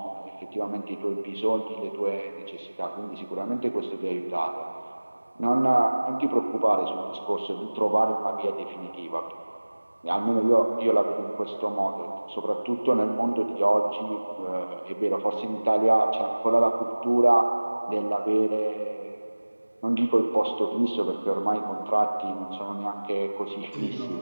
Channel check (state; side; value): inverted; both; correlation -1.00